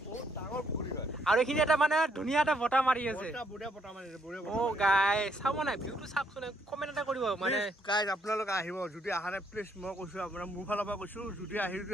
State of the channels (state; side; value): normal; both; correlation 0.71